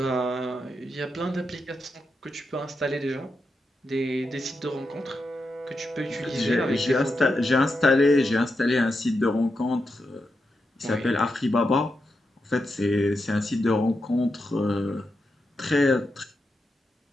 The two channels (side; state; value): both; normal; correlation 0.86